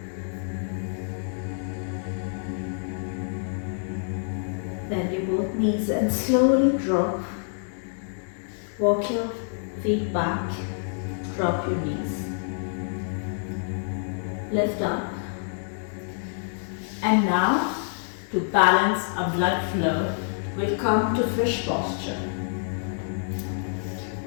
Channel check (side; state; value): right; silent; digital silence